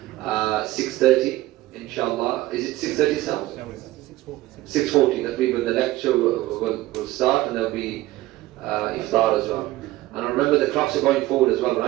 6:30, inshallah. Is it 6:30 now? 6:40. That will be when the lecture will start, and there'll be iftar as well. And remember, the clocks are going forward as well,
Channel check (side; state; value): left; quieter; 17.0 dB